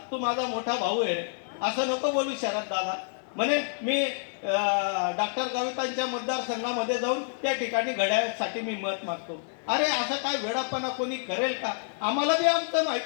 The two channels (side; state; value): right; silent; 59 dB below the other